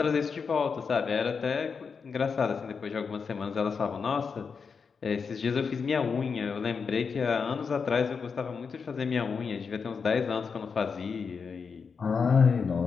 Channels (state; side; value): quieter; right; 5.6 dB